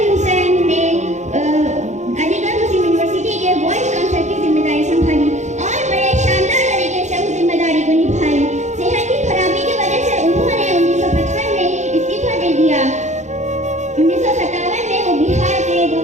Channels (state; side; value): late; left; 0.34 ms